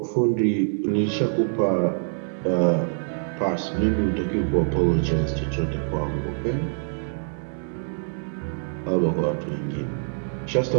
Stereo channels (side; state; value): left; silent; 62 dB below the other